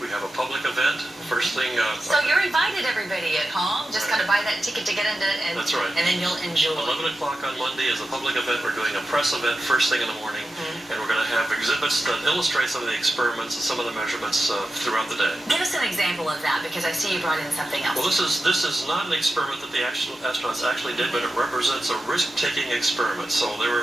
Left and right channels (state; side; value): normal; both; correlation 0.91